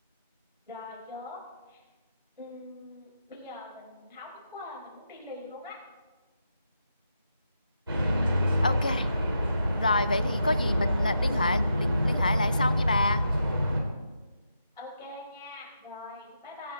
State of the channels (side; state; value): both; inverted; correlation -0.84